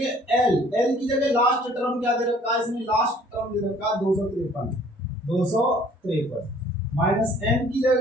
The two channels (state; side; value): normal; both; correlation 0.56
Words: एल की जगह लास्ट टर्म क्या दे रखा है इसमें? लास्ट टर्म दे रखा है 253 माइनस एन की